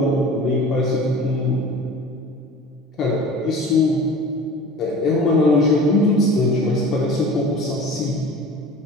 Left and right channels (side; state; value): both; normal; correlation 0.40